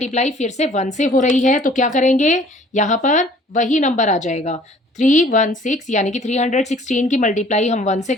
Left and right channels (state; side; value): normal; both; correlation 0.54